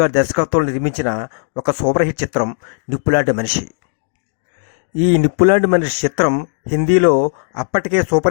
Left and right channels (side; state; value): right; silent; digital silence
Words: దర్శకత్వంలో నిర్మించిన ఒక సూపర్ హిట్ చిత్రం నిప్పులాంటి మనిషి. ఈ నిప్పులాంటి మనిషి చిత్రం హిందీలో అప్పటికే